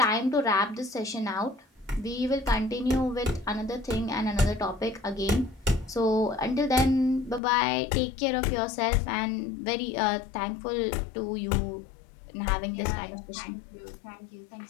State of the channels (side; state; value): right; drops out; at 7.4 s